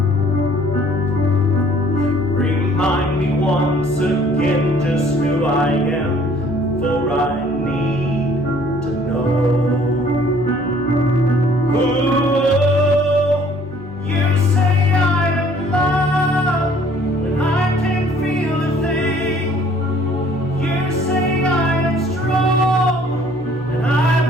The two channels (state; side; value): normal; both; correlation 0.57